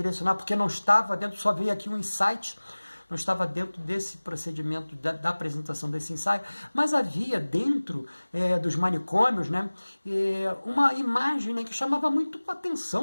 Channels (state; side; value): inverted; both; correlation -1.00